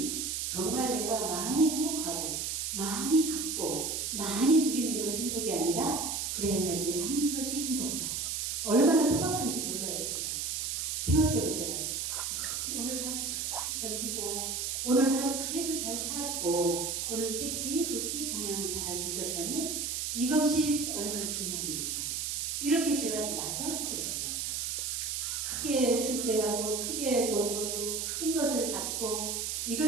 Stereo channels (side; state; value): right; noise; hiss, 1 dB below the sound